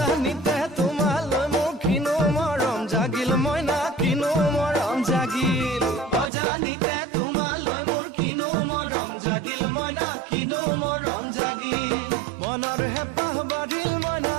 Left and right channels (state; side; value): drops out; left; at 6.3 s